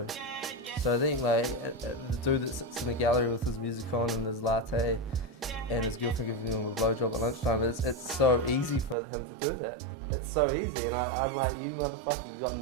do. So I think like, the dude that sits in the gallery with his music on and his latte and his girlfriend giving him a blowjob at lunchtime, it's so easy for him to do that. It's so easy, and I'm like, you motherfucker, you got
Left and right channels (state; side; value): drops out; left; at 9.0 s